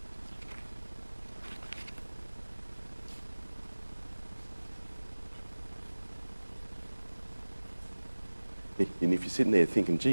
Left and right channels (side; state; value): both; inverted; correlation -1.00